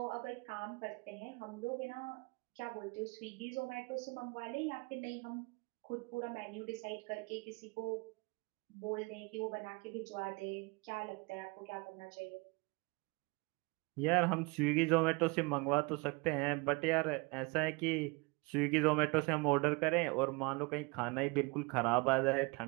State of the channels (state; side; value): quieter; left; 27.6 dB